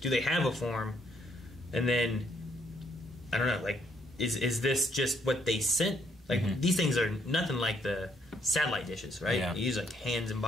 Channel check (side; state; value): both; normal; correlation 0.70